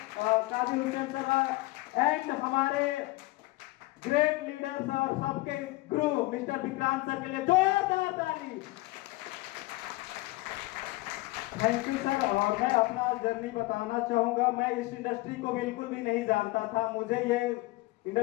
Kadir Hussain sir, and हमारे ग्रेट लीडर्स और सबके गुरु मिस्टर विक्रांत सर के लिए जोरदार ताली। Thank you sir. और मैं अपना जर्नी बताना चाहूंगा। मैं इस इंडस्ट्री को बिल्कुल भी नहीं जानता था। मुझे ये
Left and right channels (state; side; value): quieter; right; 20.6 dB